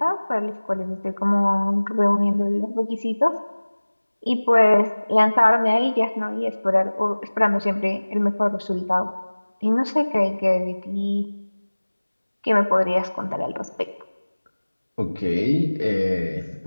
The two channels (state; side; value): inverted; both; correlation -1.00